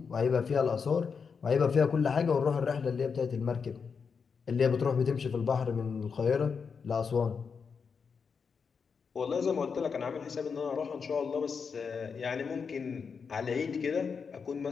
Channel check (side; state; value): right; quieter; 5.8 dB